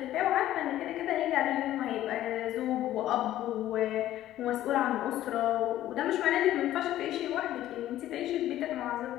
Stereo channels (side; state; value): right; quieter; 13.5 dB